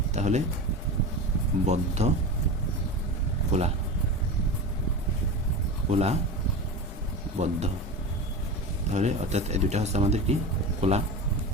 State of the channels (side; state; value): both; normal; correlation 0.26